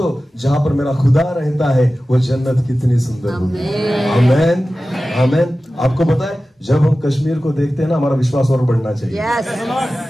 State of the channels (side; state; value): both; normal; correlation 0.95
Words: जहां पर मेरा खुदा रहता है वो जन्नत कितनी सुंदर होगी। आमेन, आमेन। आपको पता है जब हम कश्मीर को देखते हैं ना, हमारा विश्वास और बढ़ना चाहिए।